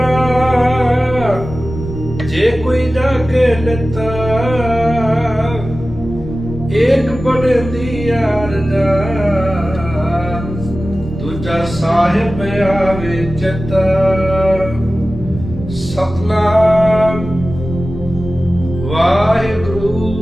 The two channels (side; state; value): both; normal; correlation 0.95